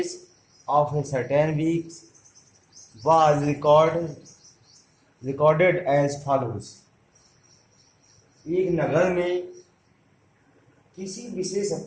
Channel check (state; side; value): identical; both; correlation 1.00